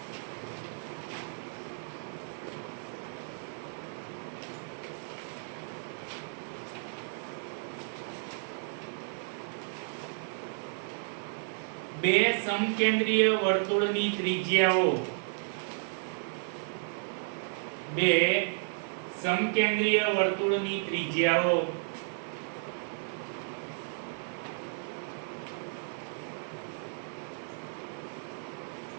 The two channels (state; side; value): silent; left; 56 dB below the other